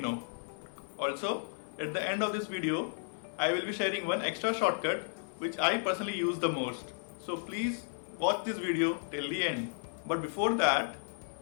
Also, at the end of this video, I will be sharing one extra shortcut which I personally use the most. So please watch this video till the end. But before that,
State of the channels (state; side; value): silent; right; 55 dB below the other